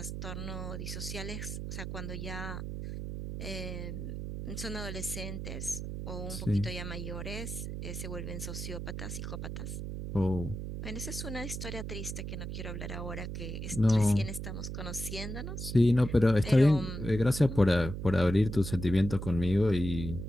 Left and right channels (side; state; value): right; noise; hum, 6 dB below the sound